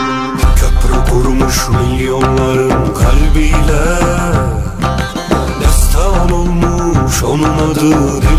Kurmuş milyonların kalbiyle, destan olmuş onun adı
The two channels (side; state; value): both; identical; correlation 1.00